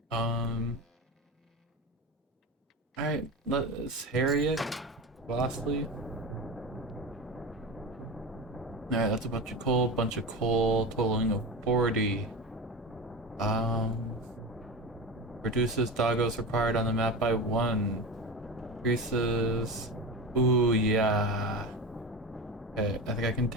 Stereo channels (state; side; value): normal; both; correlation 0.25